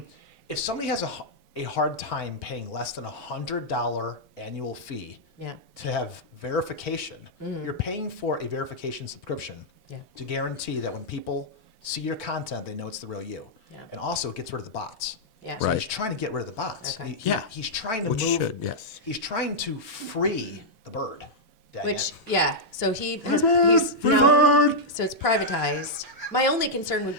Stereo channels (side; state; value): both; normal; correlation -0.06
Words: if somebody has a hard time paying less than $100 annual fee Yeah. to have verification, you're paying for a verification subscription Yeah. to guarantee that when people see your content, they know it's the real you. Yeah. And also it gets rid of the bots. Yeah. So Right. he's trying to get rid of the bots. Okay. Yeah. He's trying to Which move. should, yes. He's trying to free the bird. Dang Which it. yeah, so he's now, so it's privatized. My only concern would